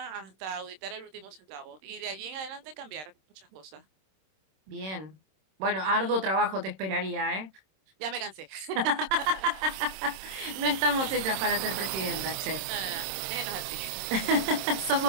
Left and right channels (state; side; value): late; left; 26 ms